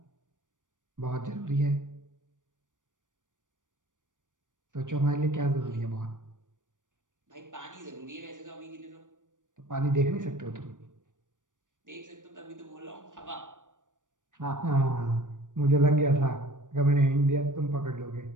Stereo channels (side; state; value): left; late; 0.87 ms